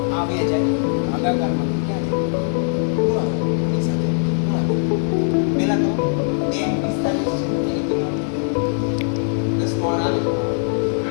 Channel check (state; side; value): silent; right; 61 dB below the other